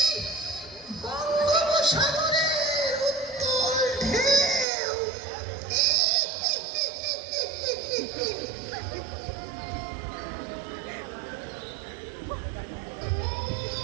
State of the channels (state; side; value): drops out; left; at 4.7 s